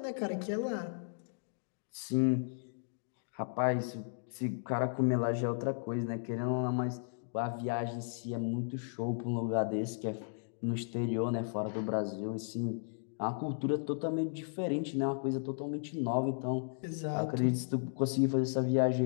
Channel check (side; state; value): right; silent; digital silence